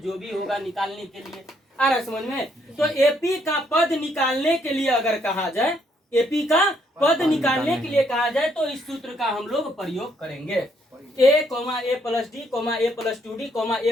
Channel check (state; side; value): normal; both; correlation 0.71